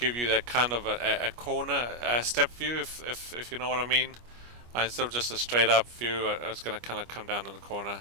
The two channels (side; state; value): left; late; 25 ms